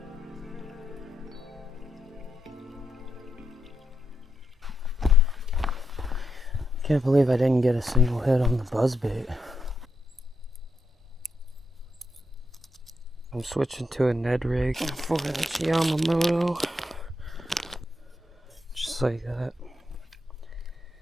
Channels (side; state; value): both; normal; correlation 0.82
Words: Can't believe I didn't get a single hit on the buzzbait. I'm switching to a Ned rig for this Yamamoto. Just like that.